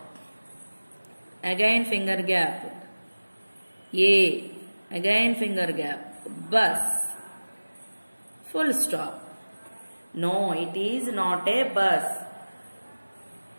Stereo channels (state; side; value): inverted; both; correlation -1.00